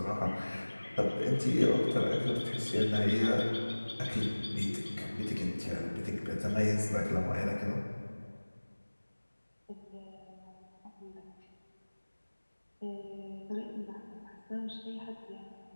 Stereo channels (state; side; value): inverted; both; correlation -1.00